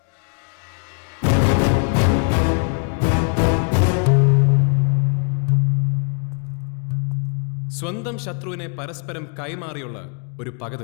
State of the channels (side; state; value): right; quieter; 39.5 dB